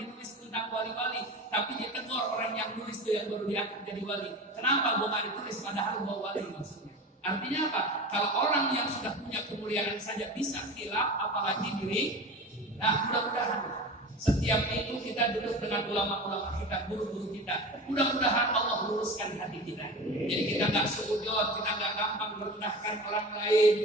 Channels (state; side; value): normal; both; correlation 0.32